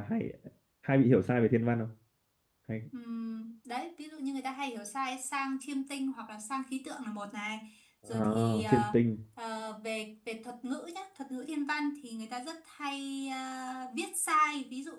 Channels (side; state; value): both; identical; correlation 1.00